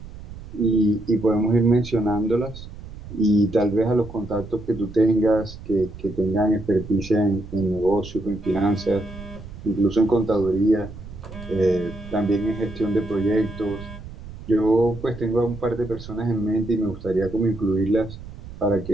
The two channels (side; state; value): right; noise; rumble, 14 dB below the sound